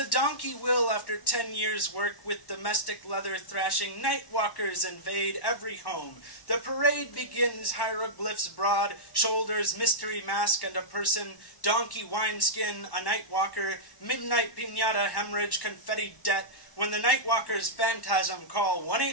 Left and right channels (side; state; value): right; late; 1.1 ms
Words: donkey will after 10 years' work with domestic leather thrashing. Night walkers invade every home. The parade begins, hieroglyphs broad, shoulders, mystery mask, and a person, donkey wineskin, a night walker, midnight piñata, hemorrhage, confetti debt, when the night walkers phantasm call